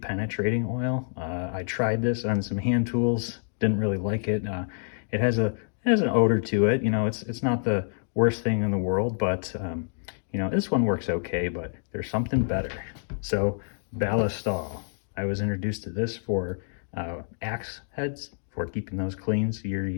penetrating oil. I tried this on some hand tools, didn't really like it. It has an odor to it. You know, it's not the worst thing in the world, but you know, this one works okay. But there's something better. So Ballistol. I was introduced to this for axe heads, for keeping those clean year to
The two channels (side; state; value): right; silent; digital silence